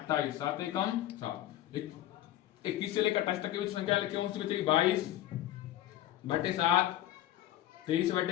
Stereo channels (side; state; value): right; quieter; 13.4 dB